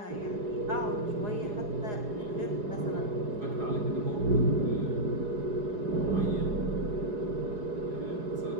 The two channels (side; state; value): left; late; 4.8 ms